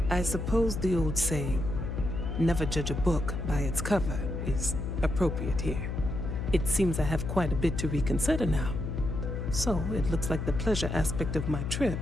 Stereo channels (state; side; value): noise; left; hum, 3 dB below the sound